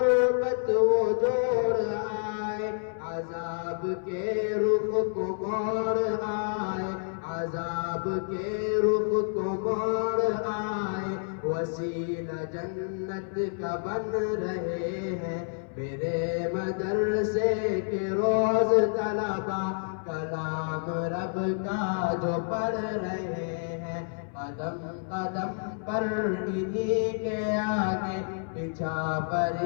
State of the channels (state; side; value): silent; right; 59 dB below the other